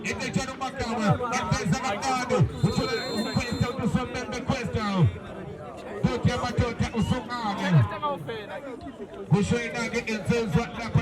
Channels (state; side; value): identical; both; correlation 1.00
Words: Ete chano makamu. Ete zangado. Uchula kwesta usomembe kwesta. Totia matotia usungane. Kushoinage inzuzwa na